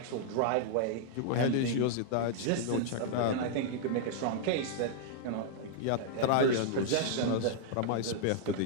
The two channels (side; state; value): both; different; correlation -0.01